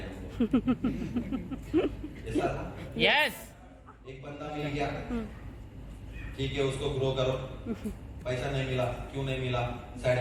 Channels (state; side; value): identical; both; correlation 1.00